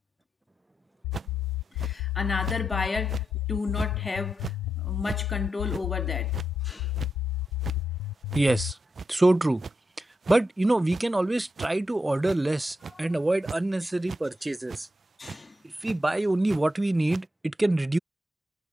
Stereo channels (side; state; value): both; normal; correlation 0.85